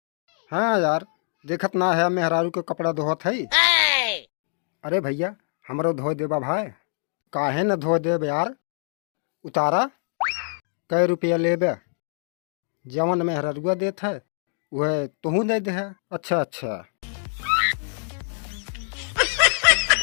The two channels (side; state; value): right; silent; digital silence